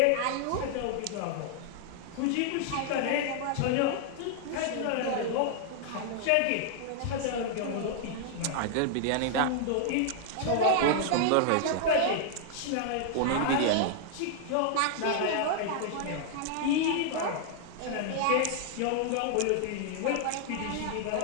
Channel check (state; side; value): different; both; correlation 0.00